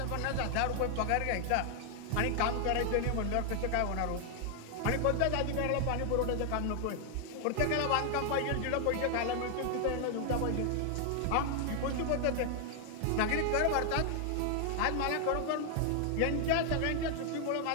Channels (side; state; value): both; different; correlation 0.00